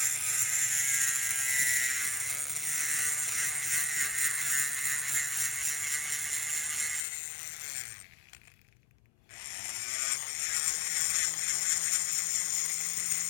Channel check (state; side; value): drops out; right; at 7.1 s